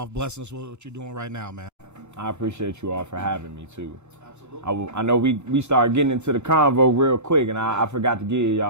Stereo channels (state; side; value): late; right; 2.9 ms